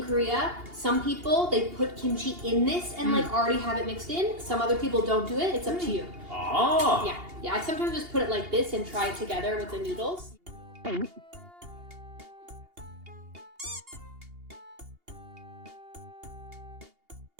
Korea, some people they put kimchi in this and like already have it mixed in. Some other people don't do it. It's up to you. Ah. Yeah. I sometimes just put it like this and try it together with the noodles.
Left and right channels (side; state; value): left; late; 2.8 ms